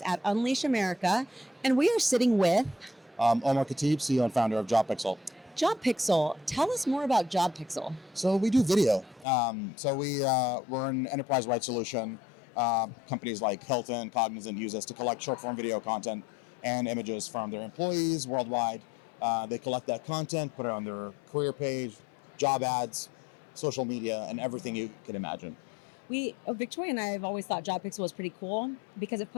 at Unleash America, and we are sitting with Omar Khateeb, CEO and founder of JobPixel. JobPixel. Tell us more about JobPixel. So we do video. We're an enterprise-wide solution. Companies like Hilton, Cognizant use us to collect short-form video content and images from their employees worldwide. They collect that content, put it on their career page, job ads, social media, and everything you can imagine. Victoria and I have always thought JobPixel was pretty cool because it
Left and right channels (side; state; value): right; drops out; at 9.2 s